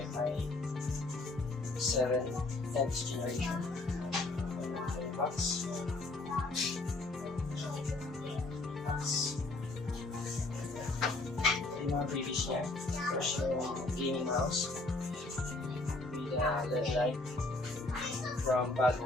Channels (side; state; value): right; quieter; 3.0 dB